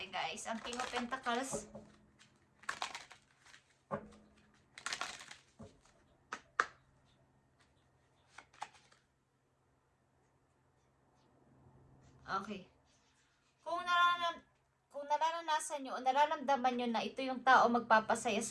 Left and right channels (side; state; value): both; identical; correlation 1.00